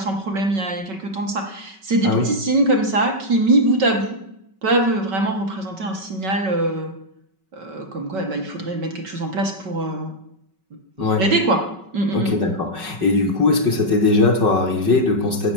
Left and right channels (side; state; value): left; late; 5.3 ms